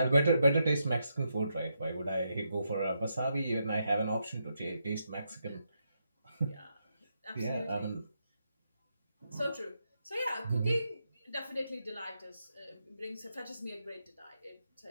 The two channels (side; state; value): both; inverted; correlation -0.82